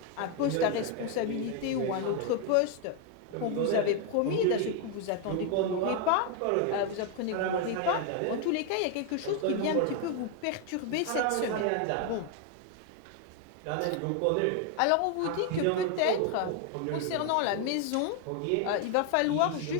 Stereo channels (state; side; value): different; both; correlation 0.01